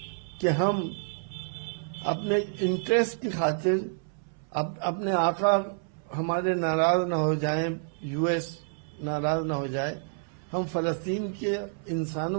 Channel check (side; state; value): left; silent; 59 dB below the other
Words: कि हम अपने इंटरेस्ट की खातिर अपने आका हमारे नाराज ना हो जाएं, यूएस नाराज ना हो जाए, हम फलस्तीन के